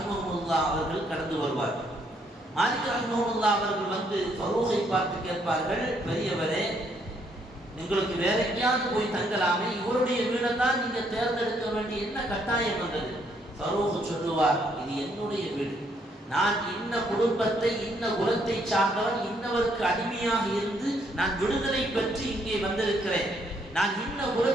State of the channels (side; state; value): both; normal; correlation 0.71